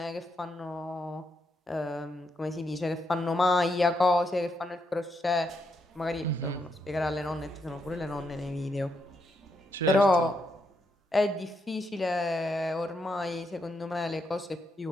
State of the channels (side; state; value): both; normal; correlation 0.79